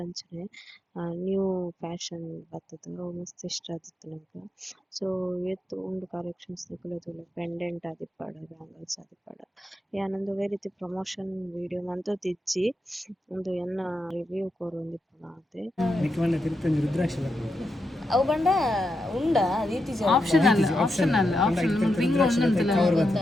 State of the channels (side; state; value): both; normal; correlation 0.85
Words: ಅಂಚನೆ ನ್ಯೂ ಫ್ಯಾಷನ್ ಬತ್ತದ ಅವು ಮಸ್ತ್ ಇಷ್ಟ ಆದಿತ್ತು ನಂಗೆ. ಸೊ ಏತ್ ಉಂಡು ಕಲೆಕ್ಷನ್ಸ್ ನಿಕುಲು ತೂಲೆ ಪೆಂಡೆಂಟ್ ಆದಿಪ್ಪಡ ಬ್ಯಾಂಗಲ್ಸ್ ಆದಿಪ್ಪಡ ಯಾನೊಂದು ಒವ್ವೇ ರೀತಿ ಪ್ರಮೋಷನ್ ವಿಡಿಯೋ ಮಂತೊಂದಿಜ್ಜಿ ಒಂದು ಎನ್ನ ರಿವ್ಯೂ ಕೊರೊಂದಿಪ್ಪುನ ಆತೆ. ಅವು ಬಂಡ ಉಂಡ ರೀತಿ ಆಪ್ಷನಲ್ ರಿಂಗ್ ಒಂದಂತಲ್ಲ